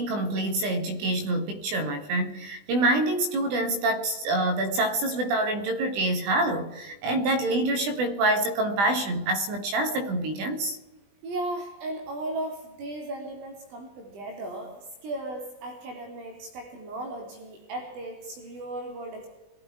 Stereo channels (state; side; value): late; left; 20 ms